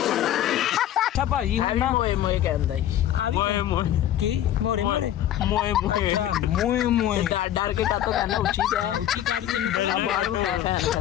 ਅੱਛਾ ਭਾਜੀ ਹੁਣ ਨਾ ਮੋਏ ਕਹਿੰਦਾ ਜੀ। ਮੋਏ ਕੀ ਮੋਰੇ ਮੋਏ ਡਰ ਕੇ ਕਾਤੋਂ ਕਹਿੰਦਾ ਉੱਚੀ ਤੇ ਉੱਚੀ ਕਰ ਕੇ ਆ ਬਾਹਰ ਬਿਠਾ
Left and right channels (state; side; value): quieter; right; 11.9 dB